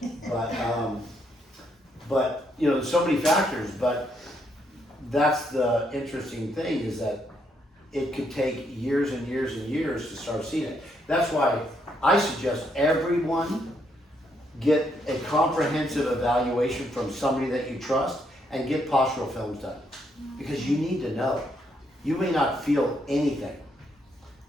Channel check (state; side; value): normal; both; correlation 0.75